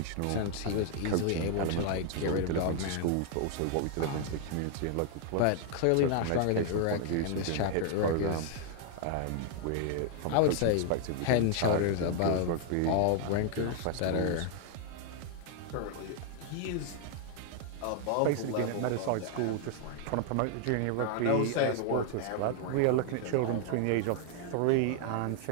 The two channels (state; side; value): different; both; correlation 0.00